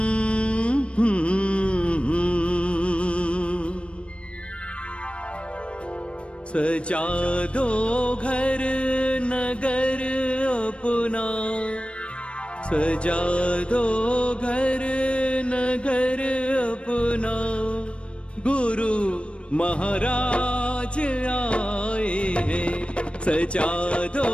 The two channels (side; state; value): right; late; 0.059 ms